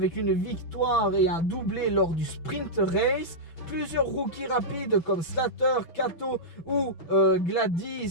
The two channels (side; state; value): right; late; 6.0 ms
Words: une victoire et un doublé lors du sprint race. Plusieurs rookies rapides comme Slater, Kato ou